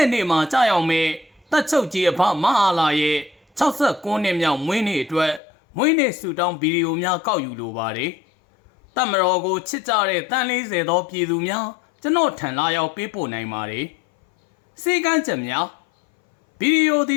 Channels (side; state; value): right; drops out; at 5.4 s